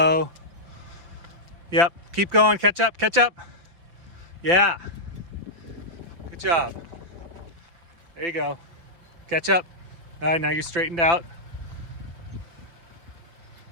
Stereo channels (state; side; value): late; left; 5.8 ms